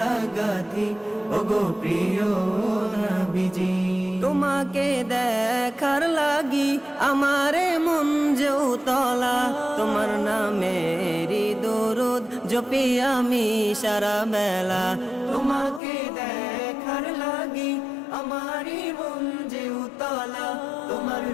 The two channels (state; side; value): drops out; right; at 15.8 s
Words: গাঁথি ওগো প্রিয় নবীজি। তোমাকে দেখার লাগি আমারে মন যে উতলা, তোমার নামেরই দরুদ জপি আমি সারা বেলা। তোমাকে দেখার লাগি আমারই মন যে উতলা, তোমার